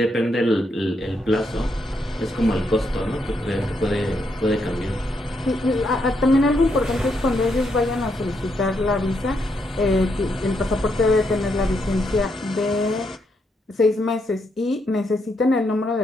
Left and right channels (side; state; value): both; normal; correlation 0.78